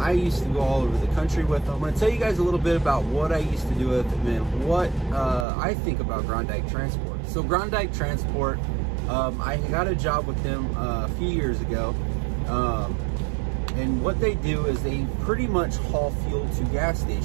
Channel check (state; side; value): drops out; left; at 5.5 s